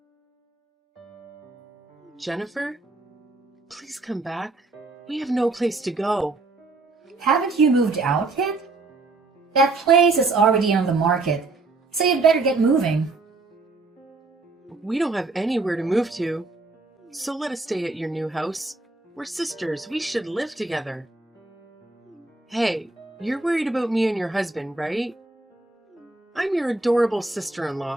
Jennifer, please come back. We have no place to go. Haven't you moved out yet? That place is already on the market, so you'd better get moving. We don't have anywhere to move to. So let us stay at your new house. We're sisters. We should live together. Hey, you're worried about me and your husband, right? I'm your adorable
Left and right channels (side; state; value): left; quieter; 3.5 dB